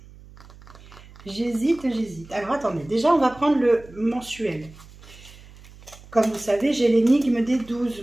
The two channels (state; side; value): noise; right; hum, 21 dB below the sound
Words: Alors, attendez. Déjà, on va prendre le mensuel. Comme vous savez, j'ai l'énigme des